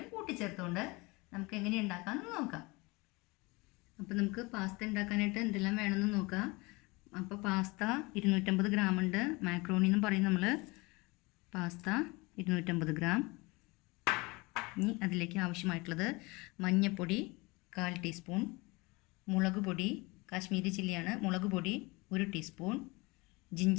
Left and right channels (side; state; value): right; quieter; 25.0 dB